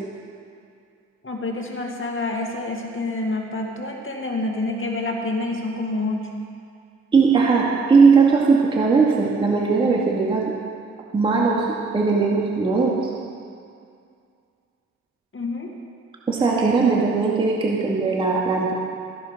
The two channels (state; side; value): quieter; left; 3.6 dB